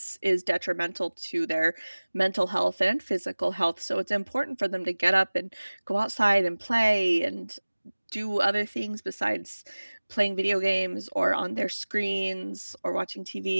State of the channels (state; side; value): inverted; both; correlation -1.00